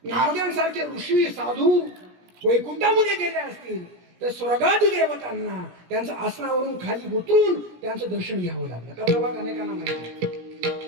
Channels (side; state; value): left; late; 17 ms